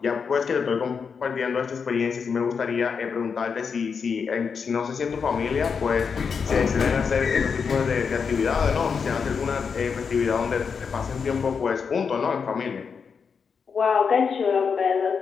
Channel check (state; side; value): quieter; right; 6.0 dB